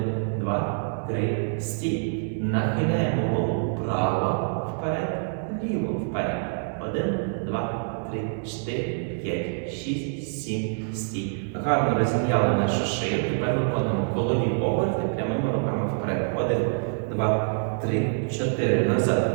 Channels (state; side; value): silent; left; digital silence